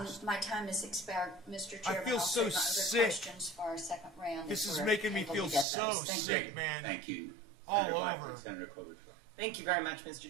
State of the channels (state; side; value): drops out; left; at 5.7 s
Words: My time has expired, Mr. Chairman. feel I'll so save my other sick. questions for our second round. This if is we're making me able feel to get so those. Thank sick, you. man. Thank you. All Senator Blackman, over. Senator Klobuchar. Thank you very much, Mr.